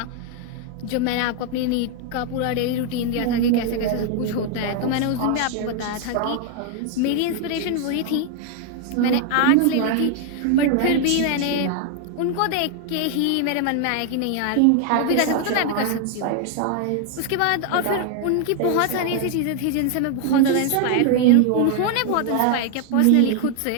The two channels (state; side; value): different; both; correlation 0.00